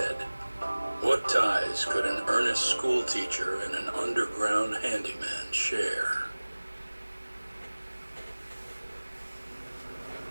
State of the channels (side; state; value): both; inverted; correlation -1.00